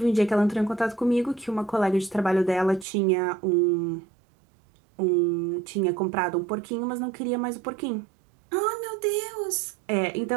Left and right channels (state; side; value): drops out; left; at 2.9 s